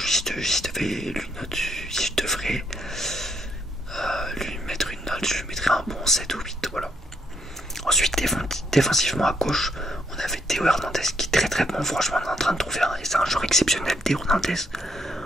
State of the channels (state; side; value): normal; both; correlation 0.74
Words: je devrais lui mettre une note, je lui mettrais un bon 7 ou 8. Voilà. Ensuite, défensivement à gauche, on avait Théo Hernandez qui est très très bon. Franchement, on est en train de trouver et c'est un joueur exceptionnel, Théo Hernandez.